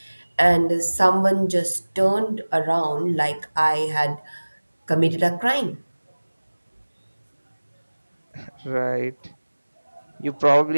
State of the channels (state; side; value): inverted; both; correlation -1.00